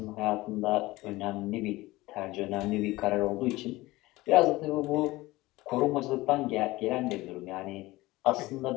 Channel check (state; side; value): quieter; right; 19.5 dB